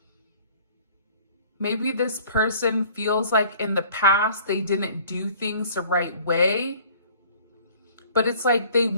maybe this person feels like in the past they didn't do things the right way. But it's like they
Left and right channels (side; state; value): both; inverted; correlation -0.52